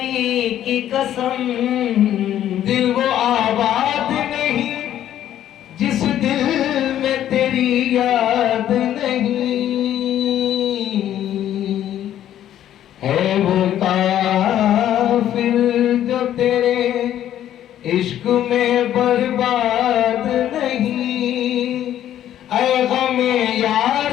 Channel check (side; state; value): right; quieter; 11.5 dB